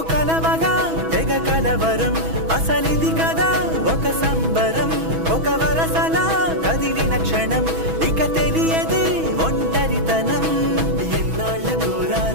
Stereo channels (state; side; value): late; left; 6.2 ms